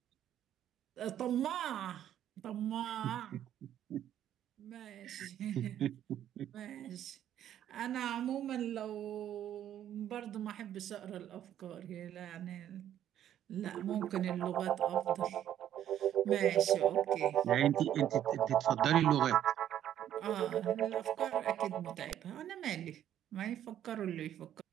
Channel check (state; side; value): quieter; left; 11.0 dB